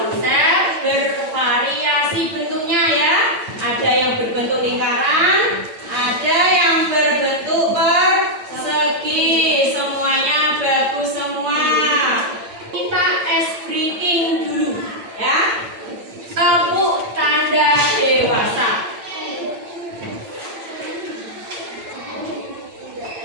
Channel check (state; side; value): late; left; 8.9 ms